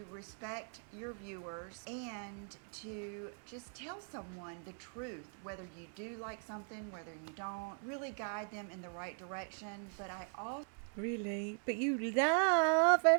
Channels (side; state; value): left; silent; 51 dB below the other